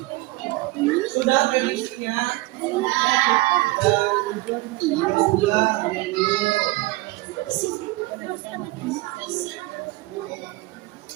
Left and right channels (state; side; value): quieter; left; 21.5 dB